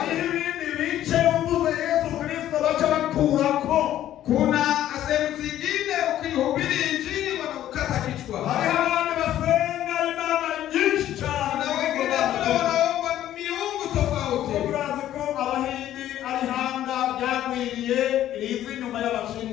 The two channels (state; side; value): quieter; right; 12.3 dB